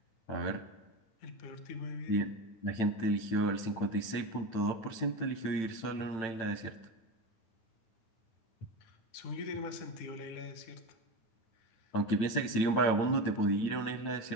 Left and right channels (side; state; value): right; late; 8.9 ms